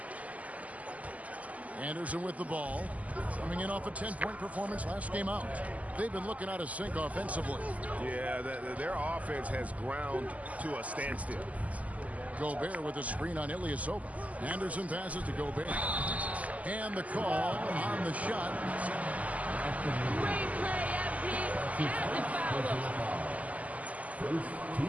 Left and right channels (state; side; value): late; left; 0.073 ms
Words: Anderson with the ball, coming in off a 10-point performance last game out. They've been looking out of sync offensively. Yeah, their offense has ground to a standstill. Gobert with a screen on Ilyasova. Anderson passes to Gobert. And the call on the shot. Great play, FP. And the foul. First